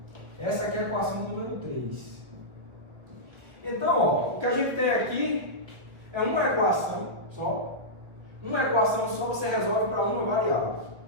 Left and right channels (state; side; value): late; left; 1.3 ms